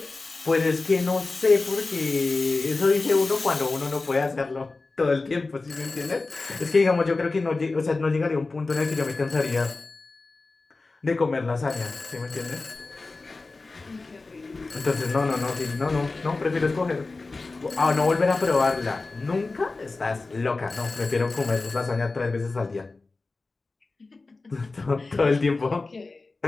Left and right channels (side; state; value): right; quieter; 3.6 dB